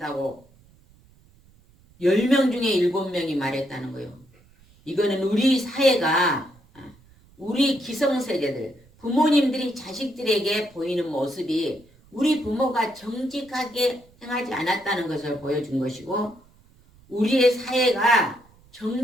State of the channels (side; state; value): right; noise; rumble, 29 dB below the sound